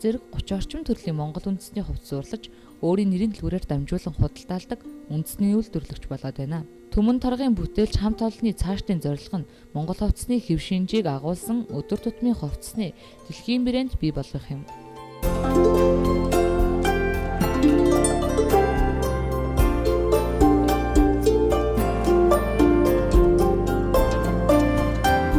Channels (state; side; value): identical; both; correlation 1.00